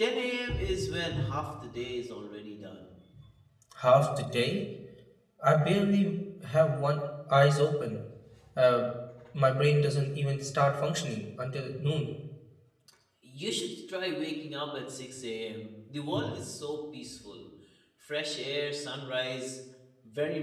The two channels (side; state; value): both; identical; correlation 1.00